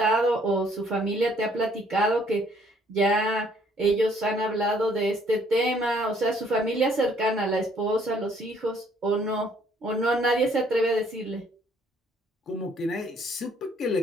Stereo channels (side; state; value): both; normal; correlation 0.63